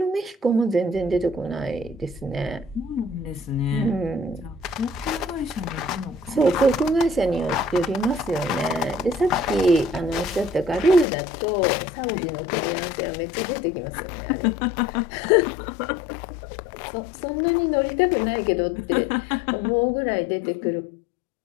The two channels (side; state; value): right; drops out; at 11.1 s